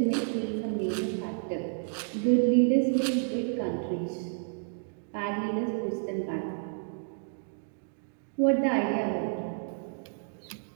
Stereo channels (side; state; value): left; silent; digital silence